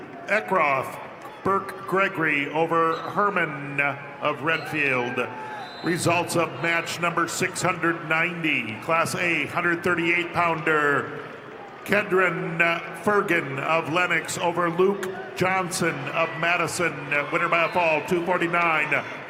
Eckroth, Burke Gregory over Herman of Redfield. Results of match number 690. Class A 138-pounder. Kedron Fergan of Lennox over Luke Johnson of Madison. Winner by a fall, 249.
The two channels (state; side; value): identical; both; correlation 1.00